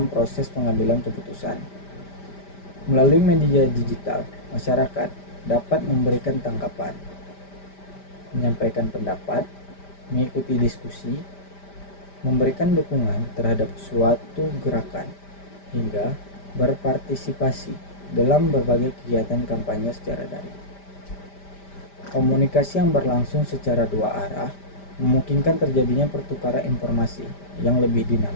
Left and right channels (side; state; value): right; late; 5.1 ms